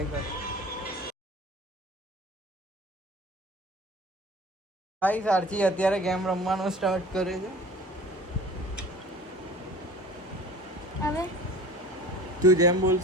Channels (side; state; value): both; normal; correlation 0.42